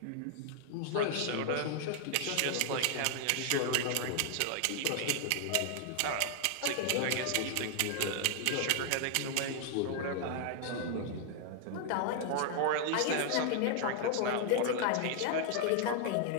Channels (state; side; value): different; both; correlation 0.00